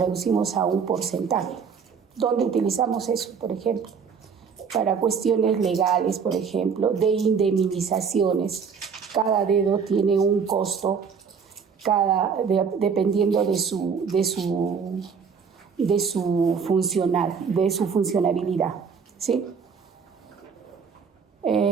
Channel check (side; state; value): left; quieter; 6.2 dB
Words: a un porcentaje. ¿Dónde utilizamos eso, por ejemplo? Para cuestiones legales, por ejemplo, de indemnizaciones. Cada dedo tiene un costo, dependiendo de su funcionalidad, ¿sí?